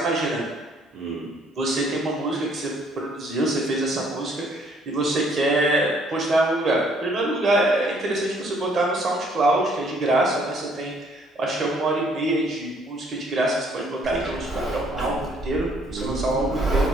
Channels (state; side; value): normal; both; correlation 0.63